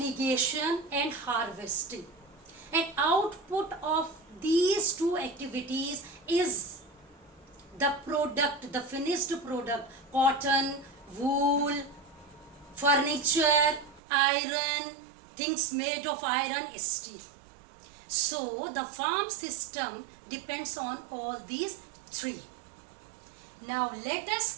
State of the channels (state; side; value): drops out; left; at 14.0 s